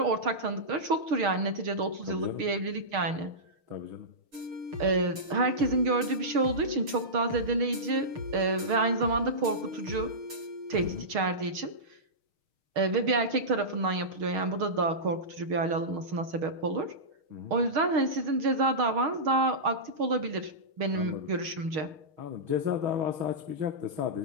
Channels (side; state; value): left; late; 6.4 ms